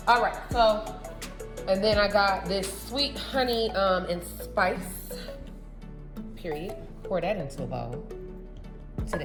All right, so, and then I got this sweet honey and spice. Period. Pour that into a bowl. Into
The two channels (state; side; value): identical; both; correlation 1.00